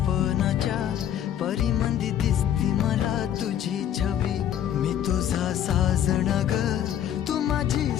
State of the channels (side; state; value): right; quieter; 10.3 dB